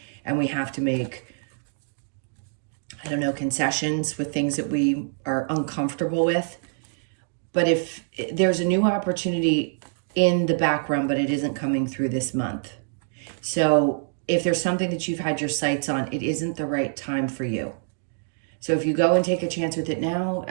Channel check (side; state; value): left; silent; digital silence